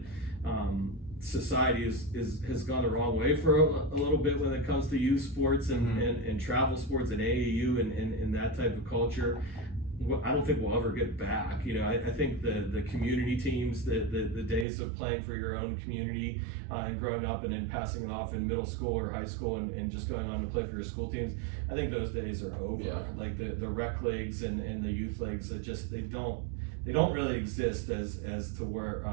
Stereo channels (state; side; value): drops out; left; at 14.7 s